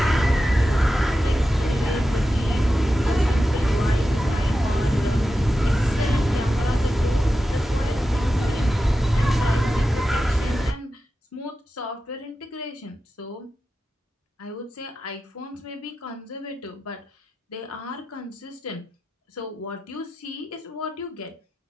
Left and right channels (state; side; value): normal; both; correlation 0.91